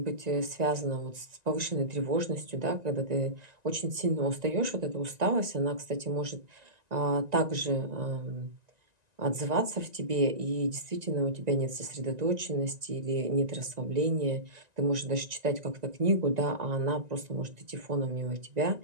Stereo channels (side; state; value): left; late; 1.9 ms